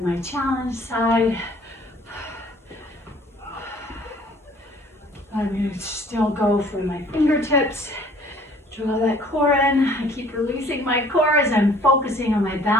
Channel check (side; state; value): both; normal; correlation 0.55